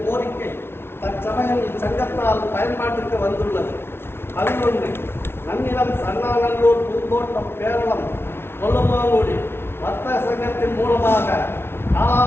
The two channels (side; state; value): right; late; 0.12 ms